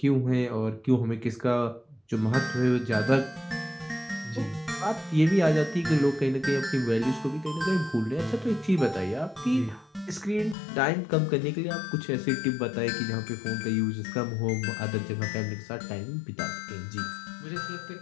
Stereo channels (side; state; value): right; drops out; at 10.6 s